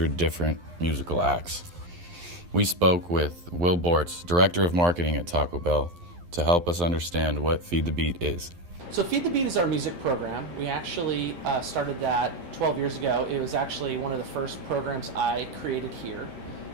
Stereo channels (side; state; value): left; late; 11 ms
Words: different musical acts. We spoke with Will Bortz, Director of Marketing at Taco Bell, to help us understand what Feed the Beat is. So Feed the Beat is our music program. We actually started that 12 years ago. It was actually one of the first programs I created here.